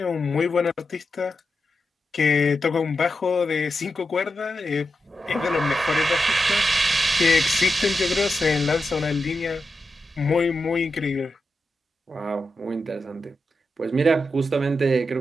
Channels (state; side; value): normal; both; correlation 0.88